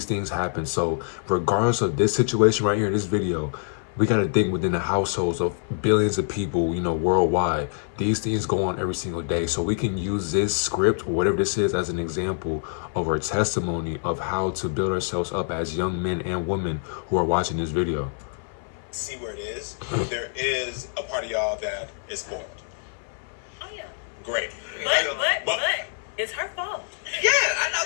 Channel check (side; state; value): right; silent; 56 dB below the other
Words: things happen. So regardless of this situation right here, this video, we got to think within the households of billions of people, you know, worldwide. These things go on every single day. So we can use this script or whatever this is as an example of our testimony of how to build ourselves up as young men and women who are watching this video. See where it is. There is a part of y'all that is spoiled. Oh yeah. Great. But it's her fault. Yeah, I